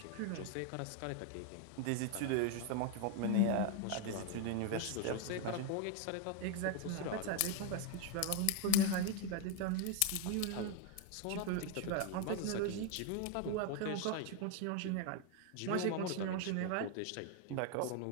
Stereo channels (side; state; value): both; different; correlation 0.01